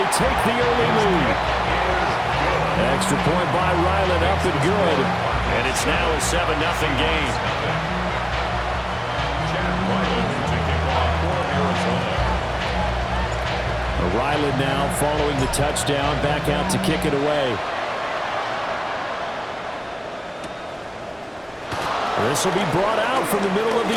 take the early lead. Extra point by Ryland, up and good. And it's now a 7-0 game. Ryland now following the touchdown, back out to kick it away. This will be brought out from the middle of the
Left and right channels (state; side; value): identical; both; correlation 1.00